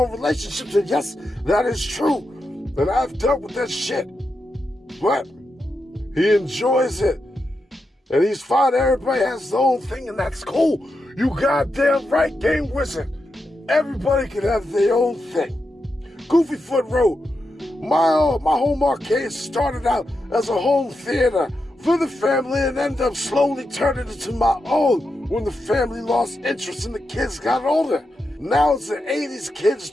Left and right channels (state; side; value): normal; both; correlation 0.87